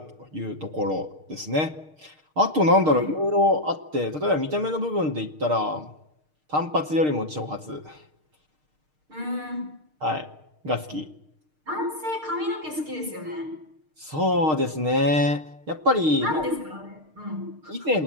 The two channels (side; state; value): left; late; 6.5 ms